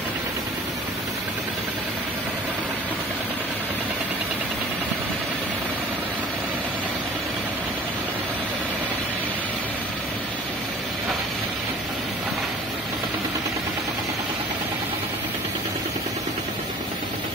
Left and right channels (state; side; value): normal; both; correlation 0.46